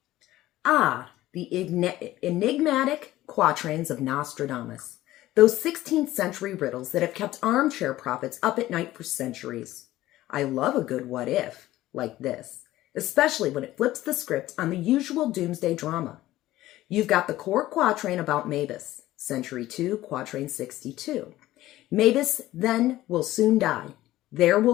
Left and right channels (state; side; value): quieter; right; 15.7 dB